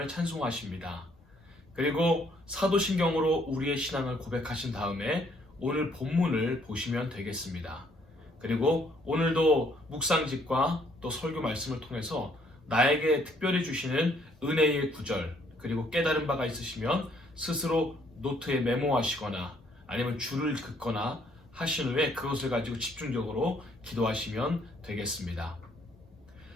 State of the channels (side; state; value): both; normal; correlation 0.66